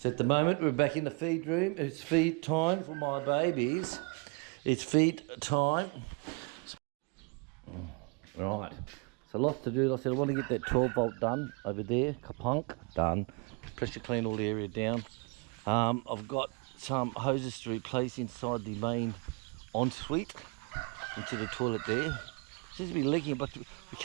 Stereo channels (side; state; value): left; quieter; 32.1 dB